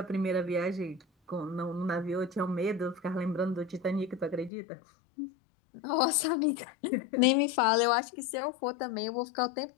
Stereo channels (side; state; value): right; drops out; at 4.5 s